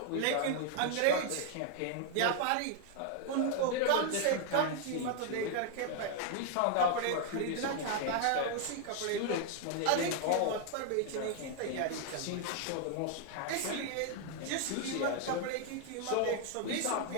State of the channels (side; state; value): both; different; correlation 0.00